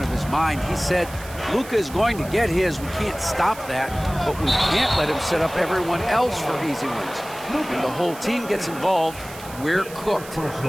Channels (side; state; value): right; noise; hiss, 16 dB below the sound